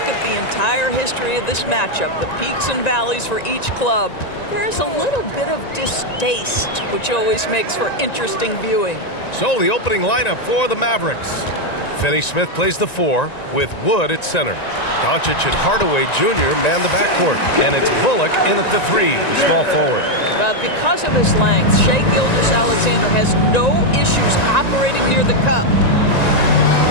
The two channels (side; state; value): right; late; 1.9 ms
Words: at the entire history of this matchup, the peaks and valleys for each club, there's a little bit of distaste, which always makes for interesting viewing. So the opening lineup for the Mavericks. Finney-Smith plays the 4 with Wood at center. Doncic and Hardaway Jr. man the backcourt. And it's Bullock in at the 3, the small forward. But because of his length, Shai Gilgeous-Alexander has no issues operating near the cup.